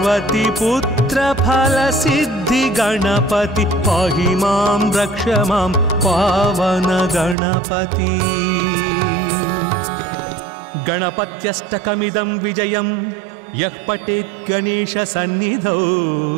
पुत्र फल सिद्धि गणपति पाहि मां रक्ष मां पावन गणपति गणपत्यष्टकमिदं विजयं यः पठेत् गणेश सन्निधौ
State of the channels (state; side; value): drops out; left; at 7.4 s